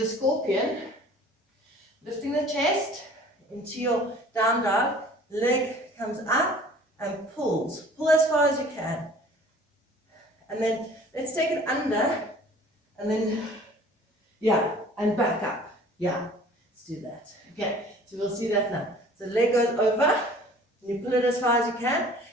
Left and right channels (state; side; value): normal; both; correlation 0.49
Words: scorpion. Lifting the chest into your down dog, leg comes up and pulls. Pull as far as you can. And then let's take it under and then, yeah, and back up. Yeah, let's do that. Okay, so we'll see that now. So leg goes over, and you pull it as far as you can.